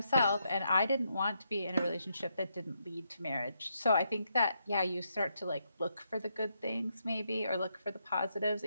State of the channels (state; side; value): inverted; both; correlation -0.79